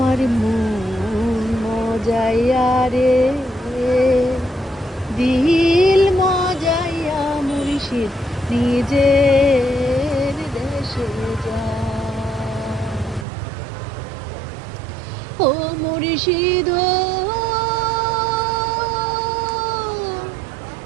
মন মজাইয়া রে, দিল মজাইয়া মুর্শিদ নিজের দেশে যায়। ও মুর্শিদ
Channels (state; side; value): drops out; left; at 13.2 s